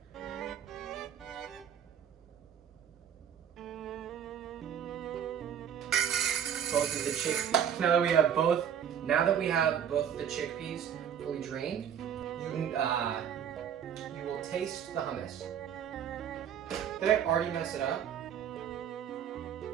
both of the chickpeas. Now that we have both of the chickpeas fully drained, you will taste the hummus. Did I already mess it up?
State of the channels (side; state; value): left; quieter; 8.8 dB